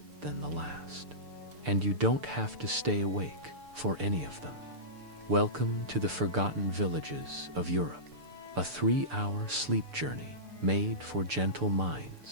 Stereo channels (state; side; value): late; left; 6.8 ms